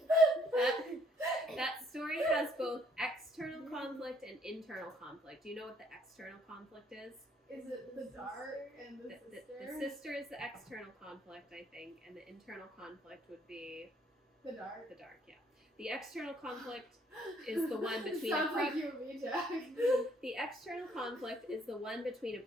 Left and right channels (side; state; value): both; normal; correlation 0.65